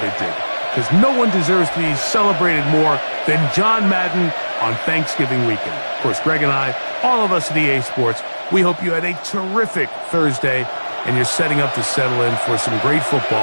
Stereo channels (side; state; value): both; inverted; correlation -1.00